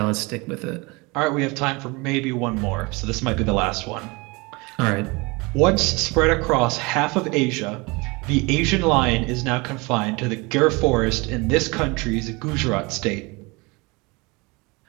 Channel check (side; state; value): left; quieter; 26.1 dB